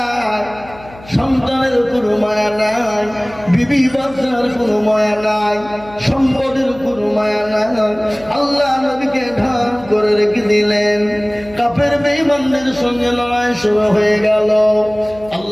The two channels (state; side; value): noise; left; hum, 20 dB below the sound